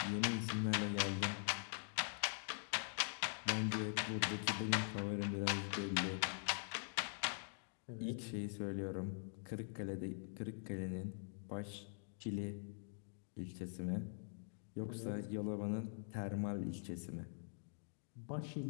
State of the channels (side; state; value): right; silent; digital silence